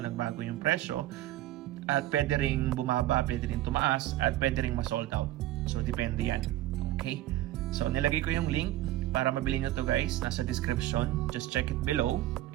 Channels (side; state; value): left; quieter; 14.9 dB